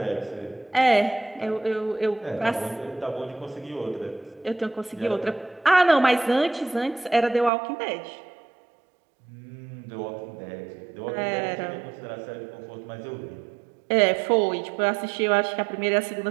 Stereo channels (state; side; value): drops out; left; at 7.5 s